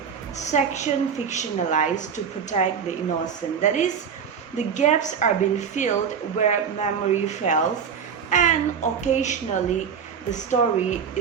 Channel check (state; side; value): quieter; left; 6.9 dB